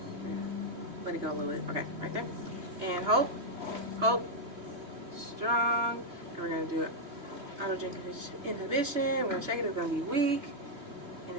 Let it go a little bit. Okay, right there. And hold, strong. And we're going to do autogenic inhibition. We're going to check it, it's going to be weak. And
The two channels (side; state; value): left; late; 3.4 ms